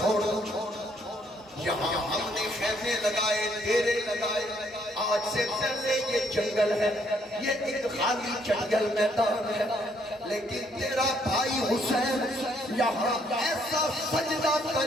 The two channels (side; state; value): both; normal; correlation 0.69